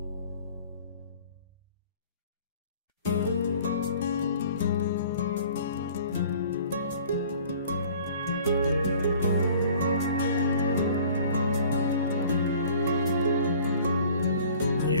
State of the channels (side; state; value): both; inverted; correlation -0.50